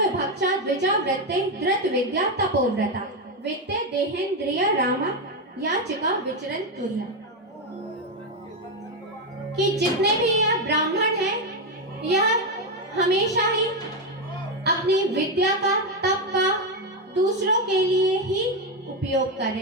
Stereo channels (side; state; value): both; normal; correlation 0.08